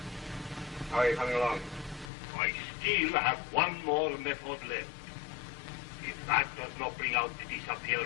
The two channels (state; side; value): drops out; right; at 2.1 s